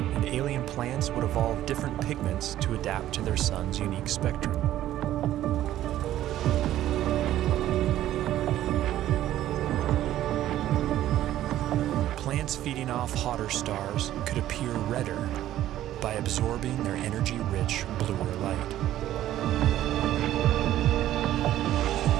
And alien plants would evolve different pigments to adapt to their sun's unique spectrum. Plants feeding off hotter stars could appear redder by absorbing their energy-rich bluer light.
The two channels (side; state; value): left; quieter; 13.1 dB